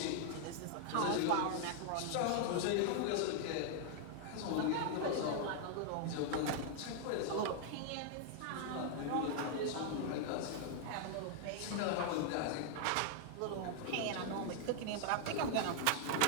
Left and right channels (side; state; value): both; different; correlation 0.00